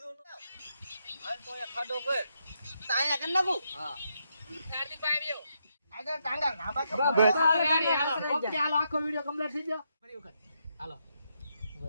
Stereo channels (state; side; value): inverted; both; correlation -0.80